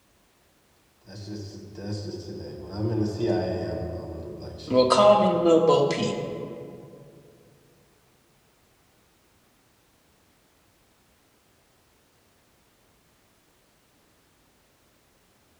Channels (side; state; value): both; identical; correlation 1.00